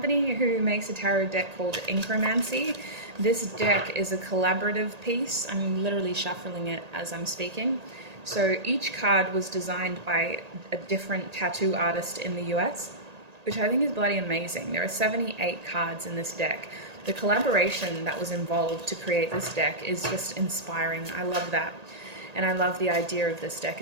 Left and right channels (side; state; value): left; late; 1.8 ms